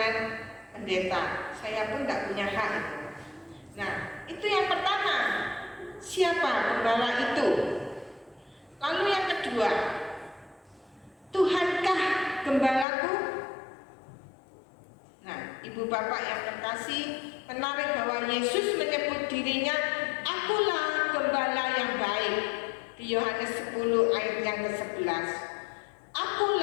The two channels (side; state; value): right; drops out; at 12.9 s